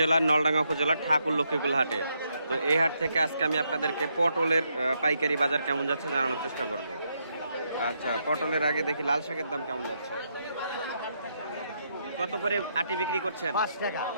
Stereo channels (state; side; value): inverted; both; correlation -0.78